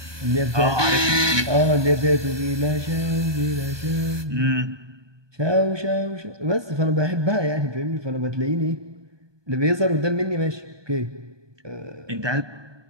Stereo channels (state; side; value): late; left; 1.2 ms